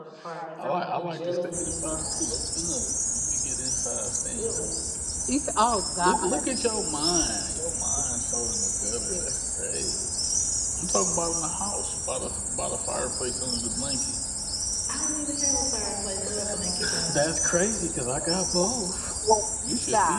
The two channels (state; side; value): identical; both; correlation 1.00